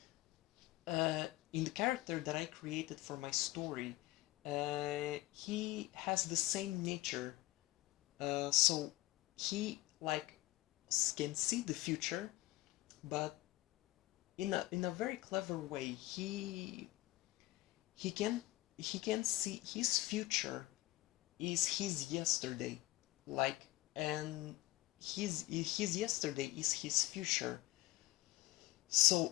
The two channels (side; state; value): right; quieter; 18.5 dB